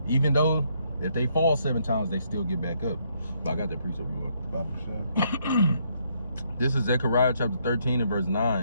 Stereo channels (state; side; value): inverted; both; correlation -0.72